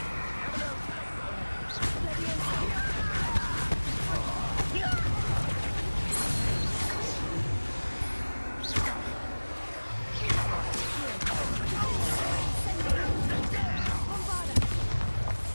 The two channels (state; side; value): inverted; both; correlation -1.00